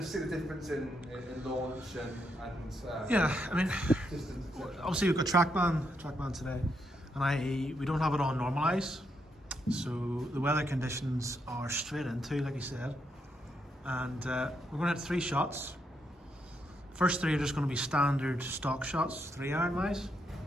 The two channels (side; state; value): both; normal; correlation 0.79